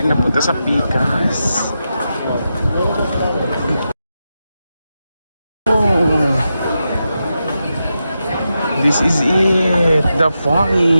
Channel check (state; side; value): inverted; both; correlation -0.88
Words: na punta sa Pikas. Oh. This is it. The